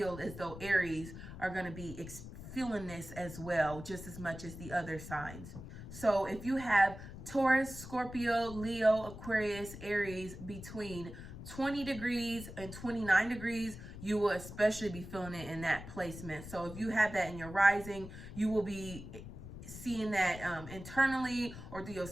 as though Aries are going to be feeling this as well, just as much as the other signs. So if you have Taurus, Scorpio, Leo, Aquarius, Aries between 20 degrees and 29 degrees, you will especially be feeling it in that placement. So if you have that in your rising, you will be seeing that internally or through your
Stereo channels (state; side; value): noise; left; rumble, 12 dB below the sound